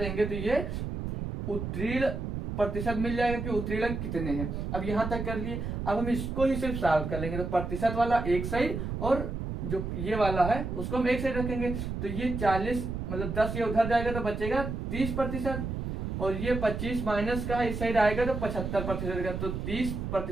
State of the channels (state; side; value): noise; right; rumble, 4 dB below the sound